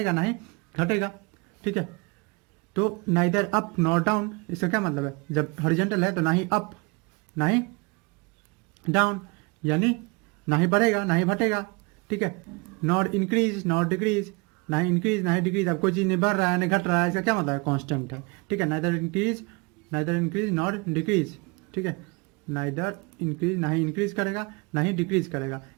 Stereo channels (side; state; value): left; quieter; 28.8 dB